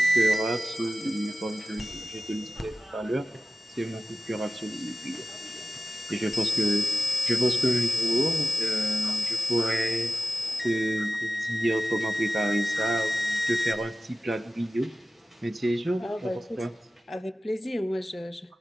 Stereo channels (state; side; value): normal; both; correlation 0.95